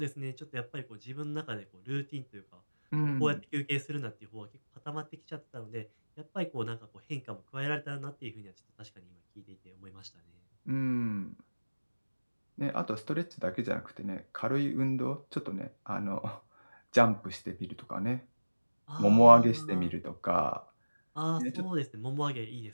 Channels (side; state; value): both; inverted; correlation -1.00